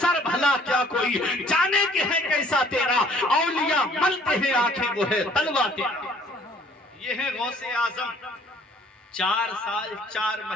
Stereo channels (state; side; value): normal; both; correlation 0.57